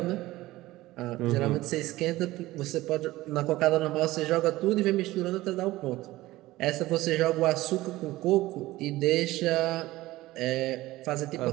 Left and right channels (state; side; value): quieter; left; 17.7 dB